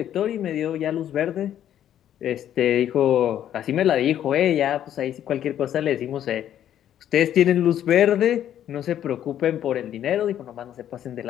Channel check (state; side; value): quieter; right; 10.8 dB